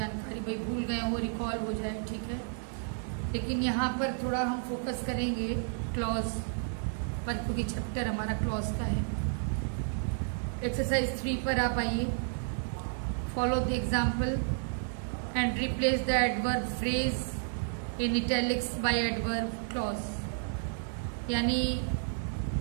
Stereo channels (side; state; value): left; silent; 57 dB below the other